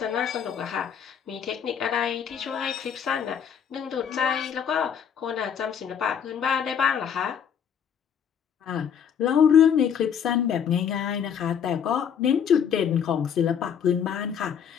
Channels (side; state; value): right; quieter; 7.9 dB